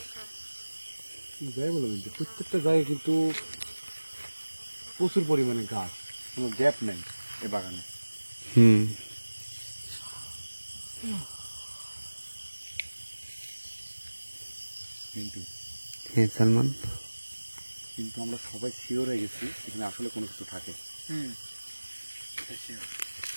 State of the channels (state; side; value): inverted; both; correlation -1.00